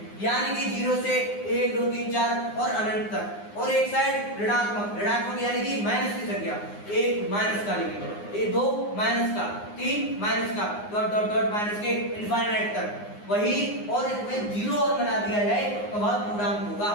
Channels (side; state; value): right; late; 9.7 ms